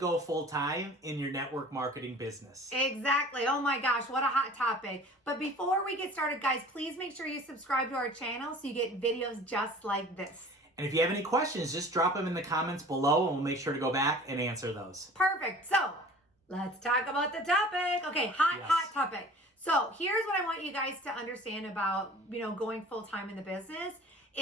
full-time in your network marketing business. Exactly. Oh my gosh, what a hot topic. But before we get started, guys, please make sure you subscribe to our channel so you get videos just like this. And if you have any questions, just drop them in the comments below and we'll make sure to go back and answer those. Perfect. So, let's talk about the topic. Okay, hot topic. So, here's what I want you guys to understand about, going full-time in the business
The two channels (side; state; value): both; normal; correlation 0.45